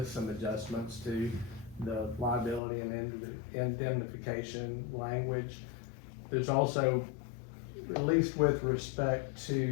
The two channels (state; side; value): drops out; right; at 2.6 s